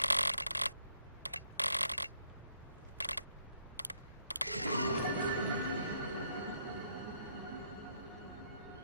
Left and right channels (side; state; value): both; inverted; correlation -0.73